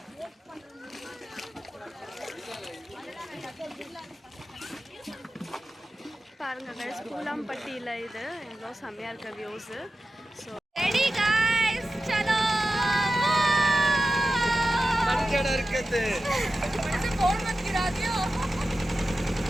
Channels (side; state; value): both; normal; correlation 0.93